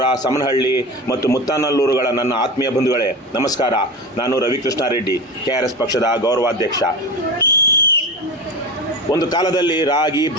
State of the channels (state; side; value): normal; both; correlation 0.27